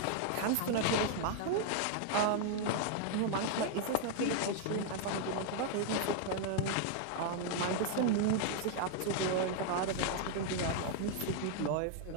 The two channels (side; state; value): both; different; correlation 0.00